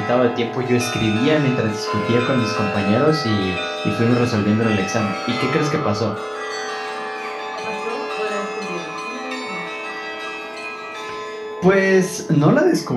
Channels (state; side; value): identical; both; correlation 1.00